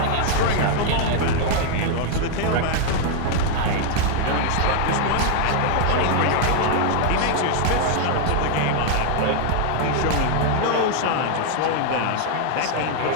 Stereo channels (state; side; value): different; both; correlation 0.00